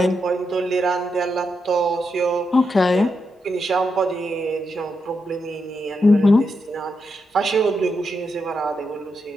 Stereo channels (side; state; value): both; normal; correlation 0.84